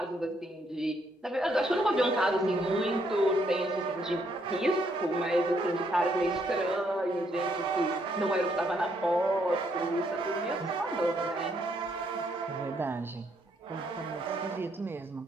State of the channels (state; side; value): normal; both; correlation 0.72